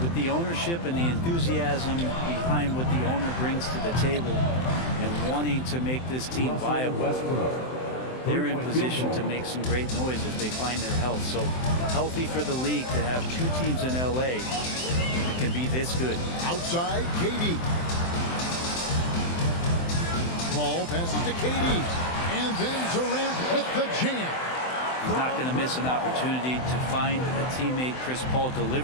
with the ownership and the enthusiasm behind what the owner brings to the table and wanting to make this team viable, they're in position to make some great noise if they find their health. So healthy for the league to have 2 teams in LA that can be this good. Outside, KD. Ball passes to KD. And then Durant with the jam. He's not going to miss an opportunity to find a teammate. Chris Paul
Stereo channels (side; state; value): right; late; 23 ms